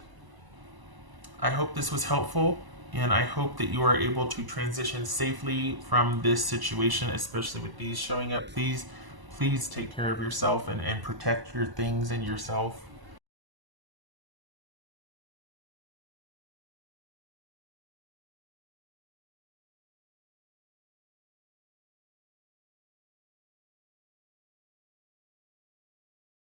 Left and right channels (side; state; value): left; late; 1.0 ms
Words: I hope this was helpful, and I hope that you are able to transition safely from this situation, especially with these showing up. Please take care of yourself and protect your things and yourself.